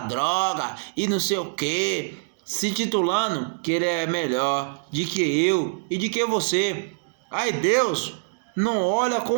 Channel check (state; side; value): silent; left; digital silence